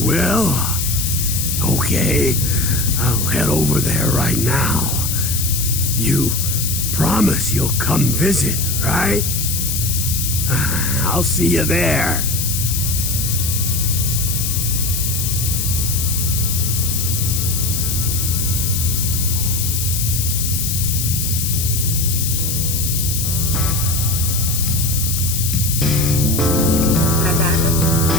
will? Okay, I'll head over there right now. You promise you'll come visit, right? I'll see you there.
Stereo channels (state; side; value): noise; left; hiss, 1 dB below the sound